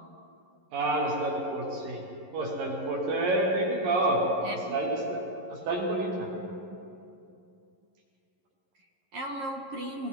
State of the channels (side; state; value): left; late; 11 ms